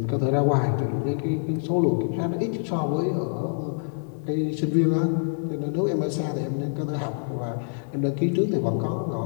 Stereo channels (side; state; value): right; silent; 61 dB below the other